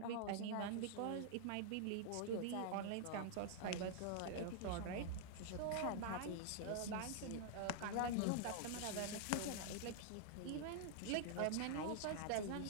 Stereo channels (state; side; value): different; both; correlation -0.01